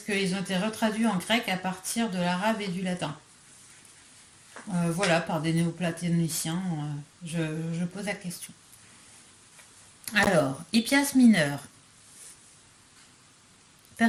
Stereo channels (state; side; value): identical; both; correlation 1.00